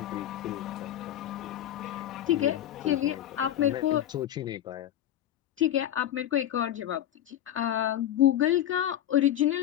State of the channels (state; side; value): quieter; right; 11.8 dB